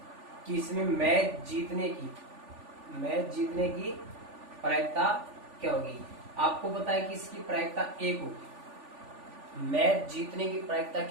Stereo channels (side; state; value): left; late; 3.4 ms